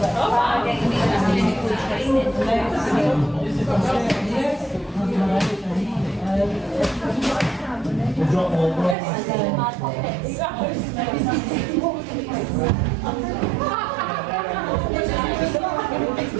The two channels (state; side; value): drops out; left; at 9.0 s